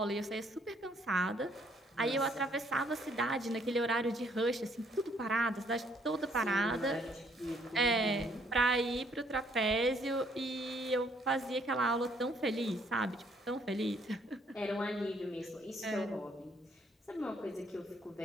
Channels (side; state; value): both; normal; correlation 0.66